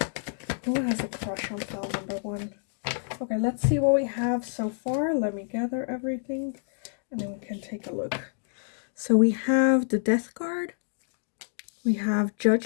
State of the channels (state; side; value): silent; right; digital silence